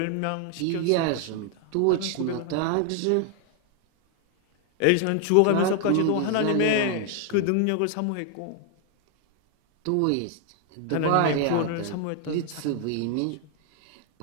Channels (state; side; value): different; both; correlation 0.00